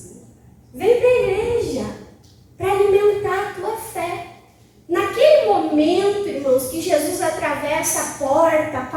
Vem para a igreja para alimentar a tua fé. Naquele momento, irmãos, que Jesus atravessa a porta, a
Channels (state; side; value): identical; both; correlation 1.00